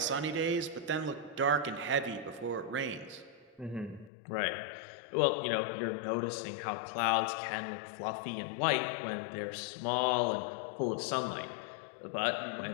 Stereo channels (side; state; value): right; drops out; at 4.1 s